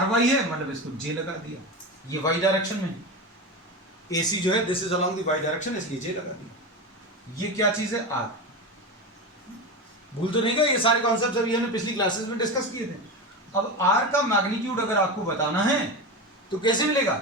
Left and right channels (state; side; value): normal; both; correlation 0.21